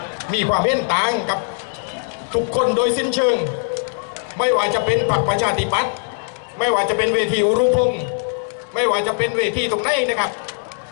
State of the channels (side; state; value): right; silent; digital silence